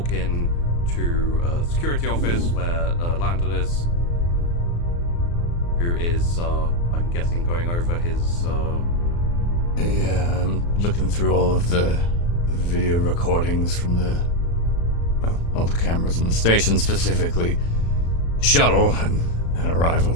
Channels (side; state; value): right; late; 35 ms